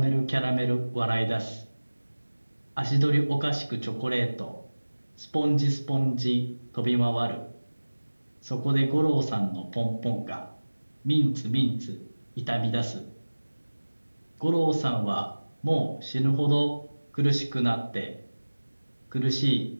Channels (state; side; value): inverted; both; correlation -1.00